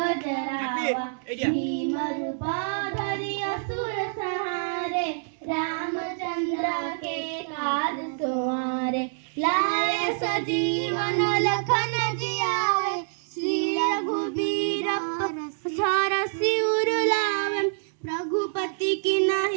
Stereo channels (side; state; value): left; silent; 61 dB below the other